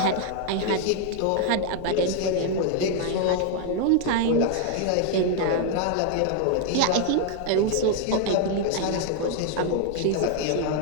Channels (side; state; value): both; different; correlation 0.00